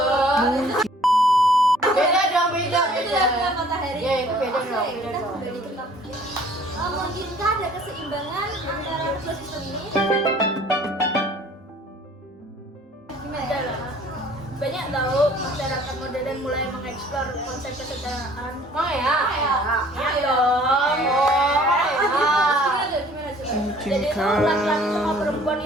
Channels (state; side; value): normal; both; correlation 0.54